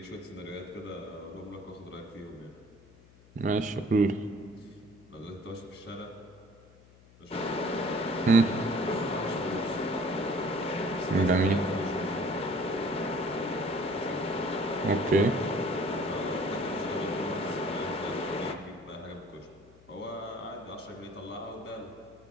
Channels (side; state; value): left; noise; hum, 25 dB below the sound